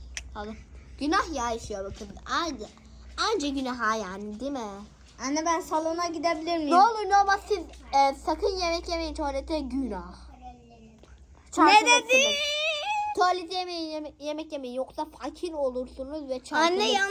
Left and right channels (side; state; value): both; identical; correlation 1.00